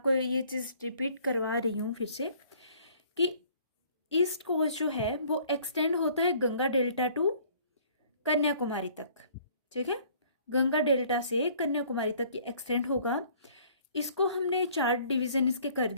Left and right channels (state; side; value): inverted; both; correlation -0.56